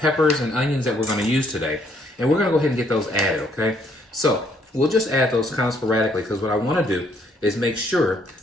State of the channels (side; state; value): both; normal; correlation 0.68